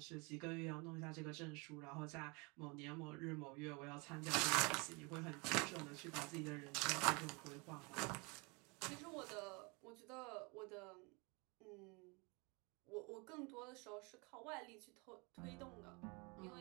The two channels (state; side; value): quieter; left; 29.5 dB